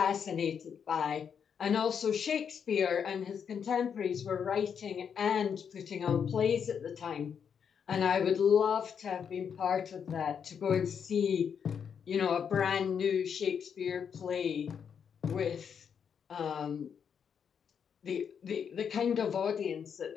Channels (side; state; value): right; quieter; 7.3 dB